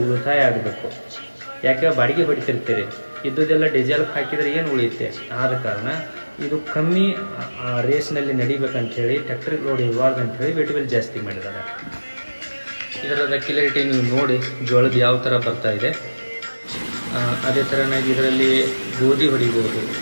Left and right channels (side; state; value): both; inverted; correlation -1.00